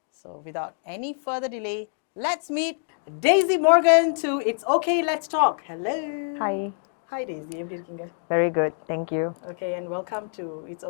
So without any further delay, let's meet Daisy Morgan to It's Okay, Let's Talk. Hello. Hi. Hi Daisy, எப்படி இருக்கீங்க? Very good, thank you. Okay, and welcome to It's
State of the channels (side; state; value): right; silent; digital silence